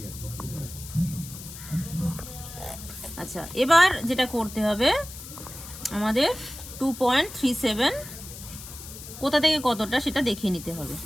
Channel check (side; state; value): left; noise; hiss, 13 dB below the sound